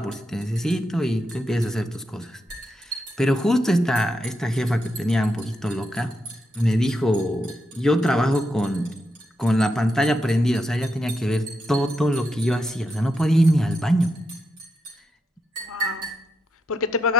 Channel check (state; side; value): normal; both; correlation 0.83